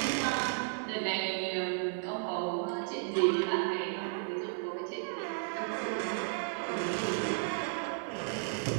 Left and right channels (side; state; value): left; silent; digital silence